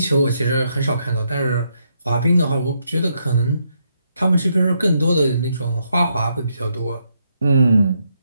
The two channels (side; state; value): both; inverted; correlation -0.78